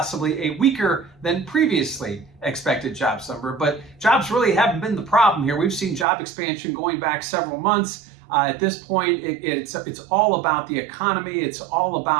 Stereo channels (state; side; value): drops out; left; at 6.1 s